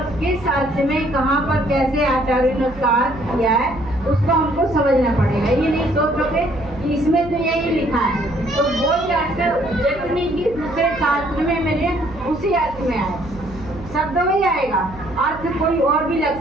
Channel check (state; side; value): noise; right; hum, 16 dB below the sound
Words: किस अर्थ में कहाँ पर कैसे आचार्य ने उसका अर्थ किया है उसको हमको समझना पड़ेगा। ये नहीं सोचोगे कि इसमें तो यही लिखा है, तो बोल के जरूर नहीं कि दूसरे शास्त्र में मेरे उसी अर्थ में आए, शब्द में ही आएगा, अर्थ कोई और भी